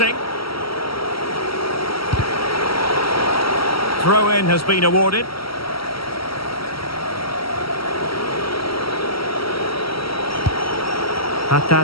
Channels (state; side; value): late; right; 0.75 ms